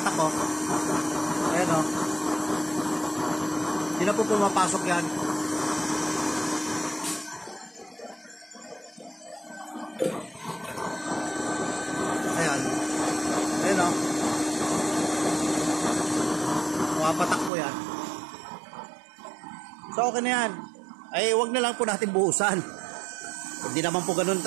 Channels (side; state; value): left; drops out; at 17.5 s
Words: oh. Ayan, oh. Hindi na po pumapasok yan. Ayan. Ayan, oh. Pumapatak po yan. So, okay na yan. Ay, wag na lang po natin buhusan. Hindi naman po ganun